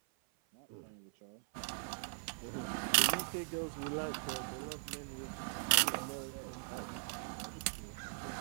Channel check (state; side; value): silent; left; 51 dB below the other